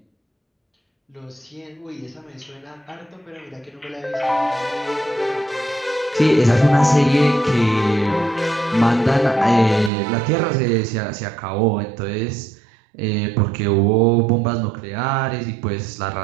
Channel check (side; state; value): left; drops out; at 9.9 s